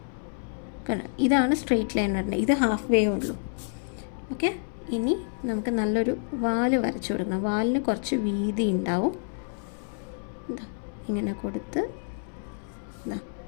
ഇതാണ് സ്ട്രെയിറ്റ് ലൈൻ വരേണ്ടത്. ഇത് ഹാഫ് വേ ഉള്ളൂ. ഓക്കെ, ഇനി നമുക്ക് നല്ലൊരു വാല് വരച്ചു കൊടുക്കണം. വാലിന് കുറച്ച് വീതി ഉണ്ടാവും. എന്താ ഇങ്ങനെ കൊടുത്ത്, എന്താ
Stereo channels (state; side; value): silent; right; 59 dB below the other